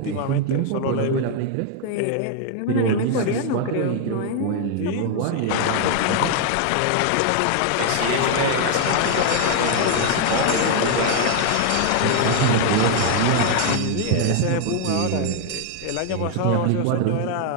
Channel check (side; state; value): both; different; correlation 0.00